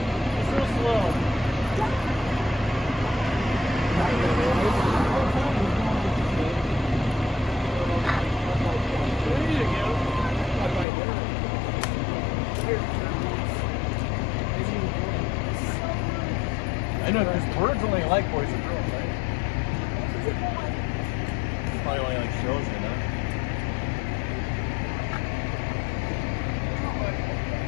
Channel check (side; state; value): right; drops out; at 10.9 s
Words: It's real slow. I know, because birds only like boys and girls, right? Probably only like shows, you know?